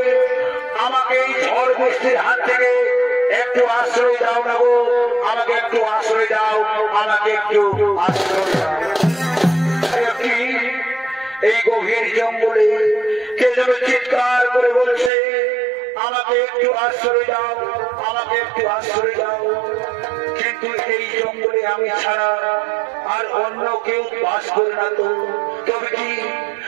আমাকে এই ঝড় বৃষ্টির হাত থেকে একটু আশ্রয় দাও না গো, আমাকে একটু আশ্রয় দাও, আমাকে একটু আশ্রয় দাও। এই গভীর জঙ্গলে কে যেন চিৎকার করে বলছে, আমাকে একটু আশ্রয় দাও, আমাকে একটু আশ্রয় দাও। কিন্তু এই জঙ্গলে আমি ছাড়া আর অন্য কেউ বাস করে না তো। তবে কি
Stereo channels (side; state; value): left; drops out; at 15.1 s